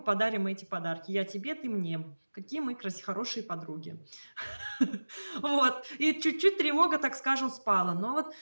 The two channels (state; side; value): inverted; both; correlation -1.00